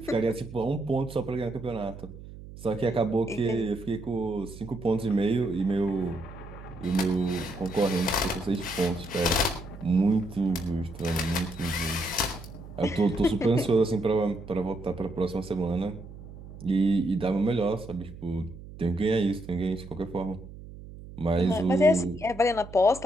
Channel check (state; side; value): noise; right; hum, 15 dB below the sound